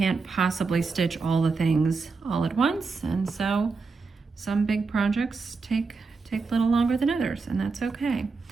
possibly stitch all the things all at once. And so some big projects take a little longer than others, and that's okay.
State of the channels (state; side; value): quieter; left; 4.4 dB